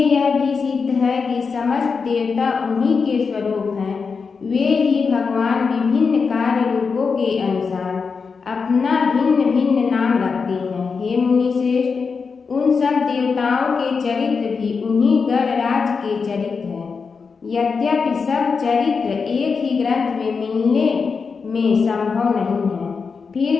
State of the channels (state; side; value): quieter; right; 5.2 dB